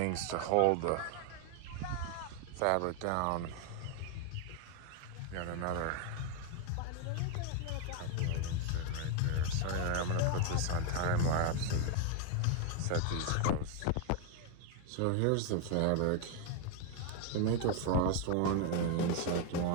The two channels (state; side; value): different; both; correlation 0.01